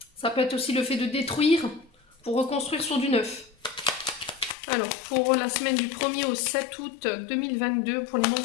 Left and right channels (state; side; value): drops out; right; at 4.5 s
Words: Ça peut être aussi le fait de détruire pour reconstruire sur du neuf. Alors, pour la semaine du 1er au 7 août 2022, pour les